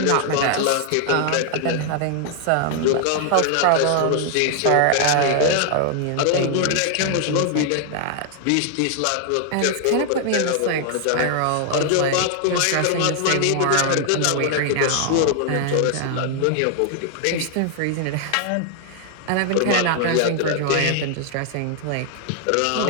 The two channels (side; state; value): both; different; correlation 0.00